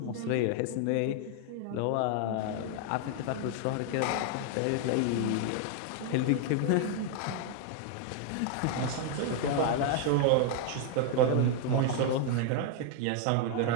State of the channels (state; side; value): different; both; correlation 0.00